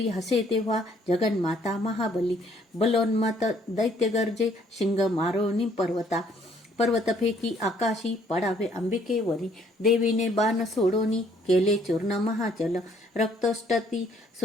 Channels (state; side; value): normal; both; correlation 0.64